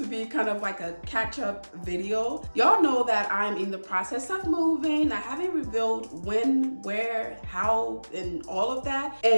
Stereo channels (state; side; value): inverted; both; correlation -1.00